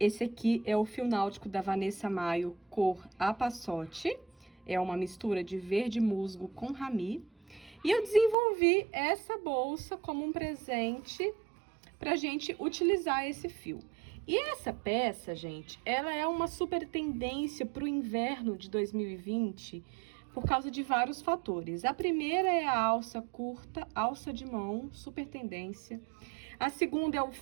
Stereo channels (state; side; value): drops out; left; at 8.3 s